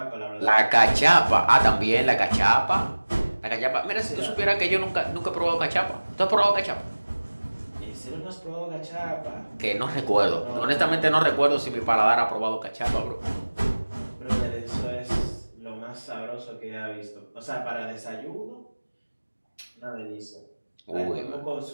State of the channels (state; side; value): inverted; both; correlation -1.00